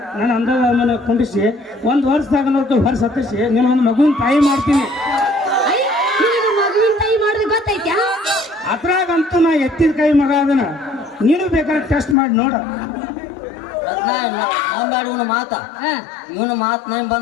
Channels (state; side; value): drops out; right; at 12.2 s